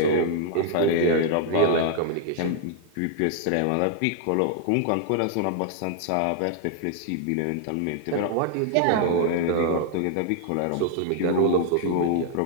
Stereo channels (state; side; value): different; both; correlation -0.01